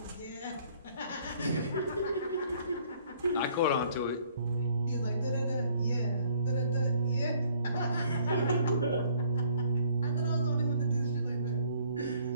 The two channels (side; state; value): both; inverted; correlation -0.60